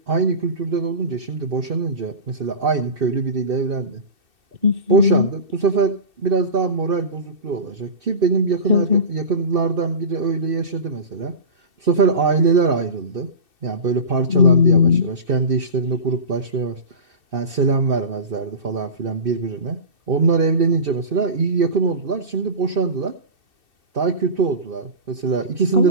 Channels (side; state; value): left; late; 2.6 ms